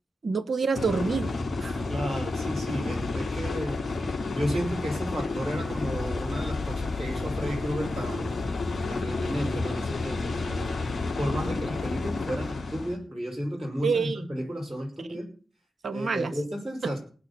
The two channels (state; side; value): normal; both; correlation 0.89